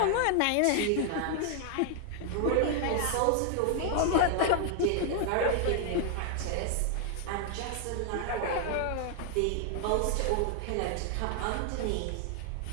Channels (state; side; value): different; both; correlation 0.00